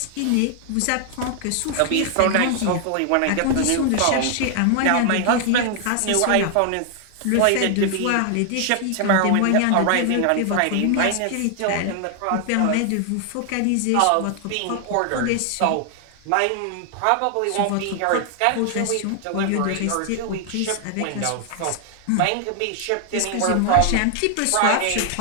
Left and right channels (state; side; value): different; both; correlation 0.00